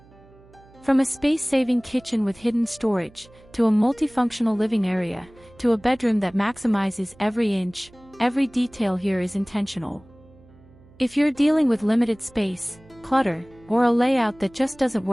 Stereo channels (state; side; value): noise; right; hum, 26 dB below the sound